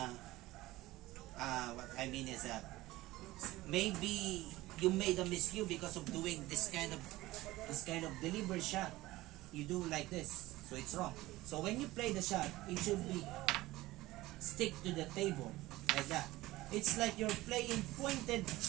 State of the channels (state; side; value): quieter; left; 18.1 dB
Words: what I mean is maybe you made a miscue because of doing this kind of deliberate shot. You do like this, so it's wrong. So when you play the shot, it should be stick to the table like that. It's like you're playing pointed